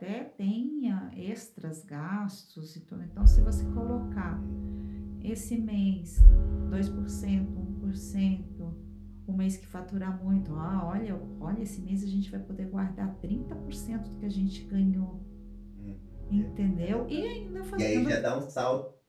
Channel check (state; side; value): identical; both; correlation 1.00